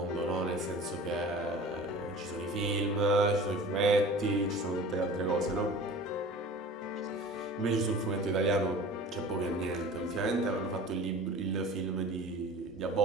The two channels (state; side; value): normal; both; correlation 0.41